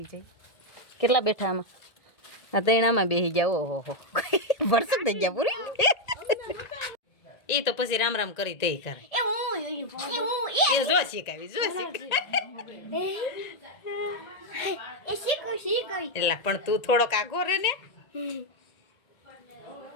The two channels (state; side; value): late; right; 1.8 ms